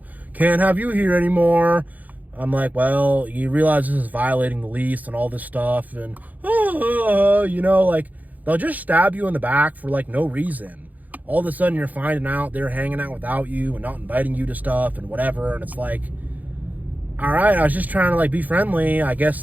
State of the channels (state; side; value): late; left; 0.080 ms